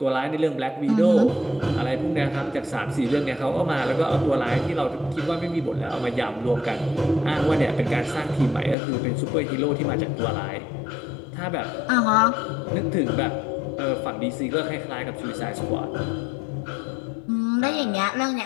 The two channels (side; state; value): right; drops out; at 8.8 s